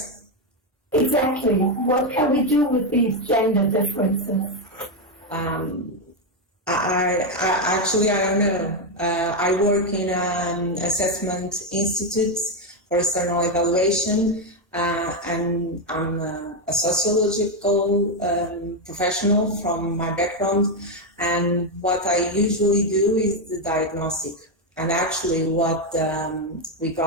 Exactly. What can we do with these gender differences? Actually, I don't know. I work in an assessment institute for external evaluation, and I'm a sociological professional from my background. And what I usually do is the diagnostic. And actually, what we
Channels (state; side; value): normal; both; correlation 0.05